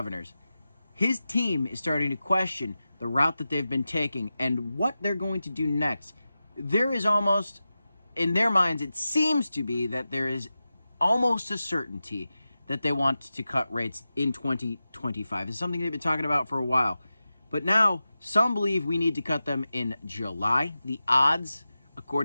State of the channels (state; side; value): inverted; both; correlation -0.93